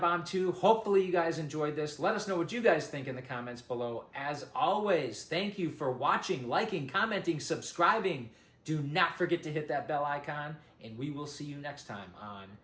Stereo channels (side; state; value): both; identical; correlation 1.00